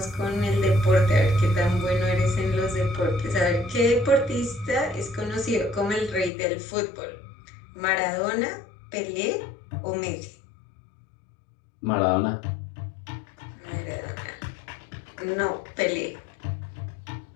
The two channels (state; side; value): drops out; right; at 6.3 s